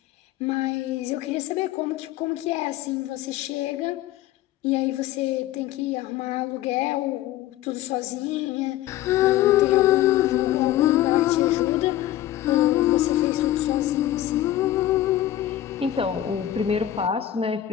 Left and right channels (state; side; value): quieter; right; 13.1 dB